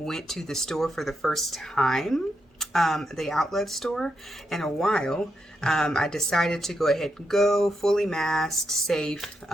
to the store for the first time, the outlet store, in a while. I decided to go ahead and go fully masked, safe.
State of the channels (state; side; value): normal; both; correlation 0.83